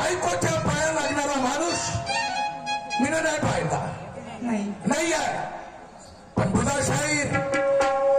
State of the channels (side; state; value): both; identical; correlation 1.00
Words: पाया लागणारा माणूस मी नाही पाहिला, नाही आहे. पण बुधा शाहीर,